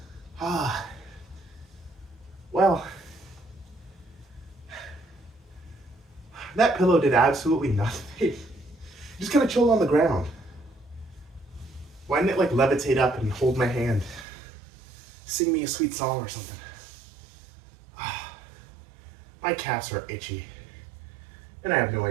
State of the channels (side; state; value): left; drops out; at 14.2 s